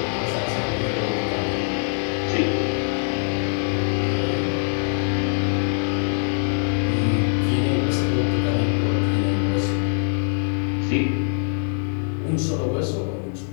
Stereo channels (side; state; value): right; silent; 63 dB below the other